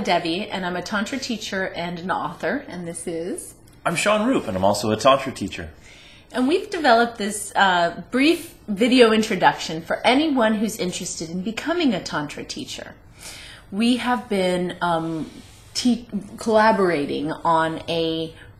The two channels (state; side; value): identical; both; correlation 1.00